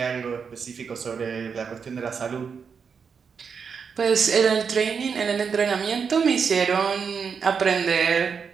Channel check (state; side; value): quieter; left; 6.1 dB